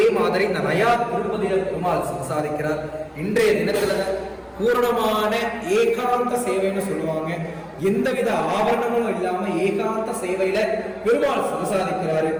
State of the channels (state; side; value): identical; both; correlation 1.00